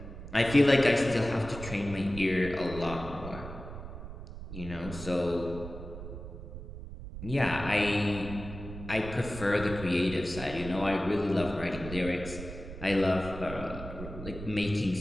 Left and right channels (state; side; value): noise; right; rumble, 11 dB below the sound